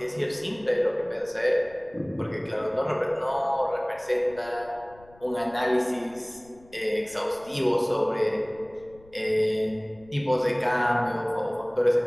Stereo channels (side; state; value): left; noise; rumble, 25 dB below the sound